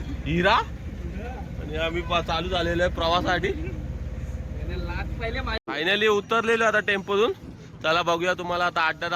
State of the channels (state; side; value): identical; both; correlation 1.00